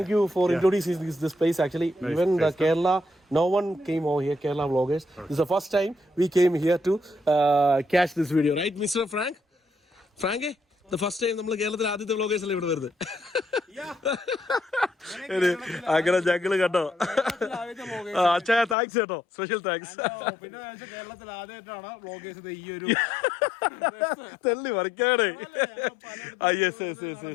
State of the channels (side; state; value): right; drops out; at 18.8 s